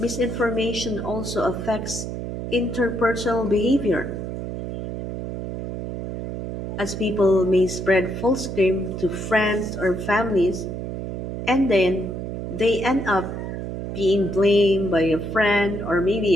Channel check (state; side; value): noise; right; hum, 6 dB below the sound